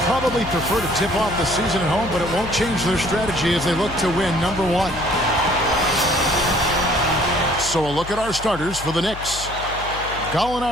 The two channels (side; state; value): left; noise; hum, 12 dB below the sound